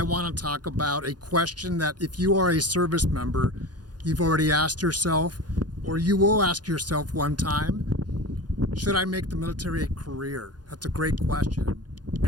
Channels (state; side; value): late; left; 0.69 ms